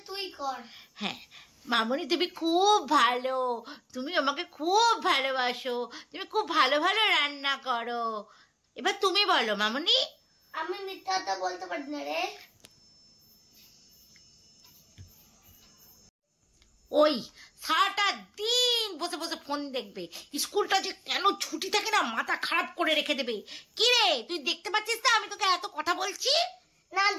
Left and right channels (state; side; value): identical; both; correlation 1.00